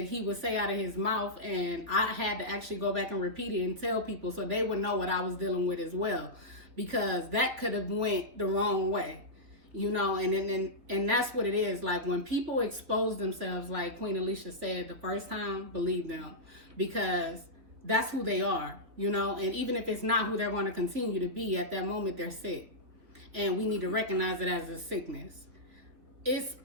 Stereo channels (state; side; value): late; left; 3.8 ms